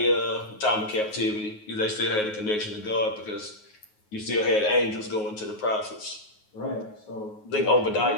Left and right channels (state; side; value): late; right; 9.4 ms